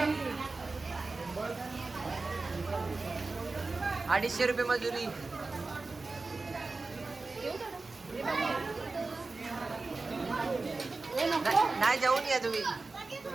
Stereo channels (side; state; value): left; quieter; 3.7 dB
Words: 250 रुपये मजुरी. नाही जाऊन या तुम्ही.